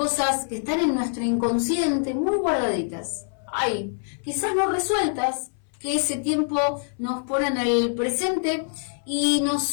que están en nuestro inconsciente muy guardaditas, ahí, quizás no resueltas, que ese tiempo nos pone en el presente y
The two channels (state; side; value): silent; right; 62 dB below the other